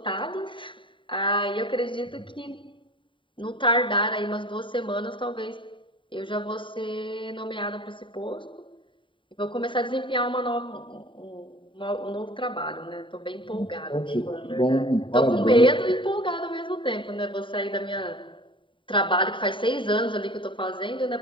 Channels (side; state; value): right; late; 0.24 ms